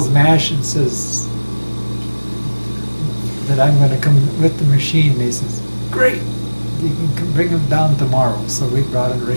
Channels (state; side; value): inverted; both; correlation -1.00